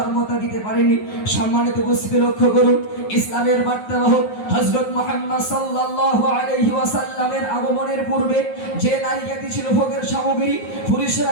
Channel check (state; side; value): late; right; 9.5 ms